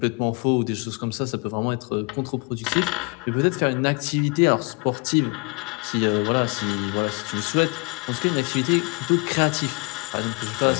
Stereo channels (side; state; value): right; quieter; 29.3 dB